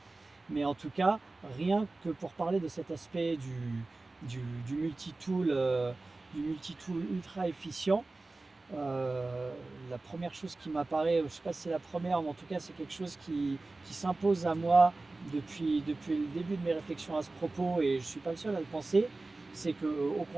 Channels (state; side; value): quieter; left; 3.2 dB